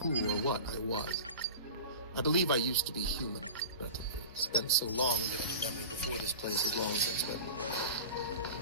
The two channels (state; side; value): inverted; both; correlation -0.33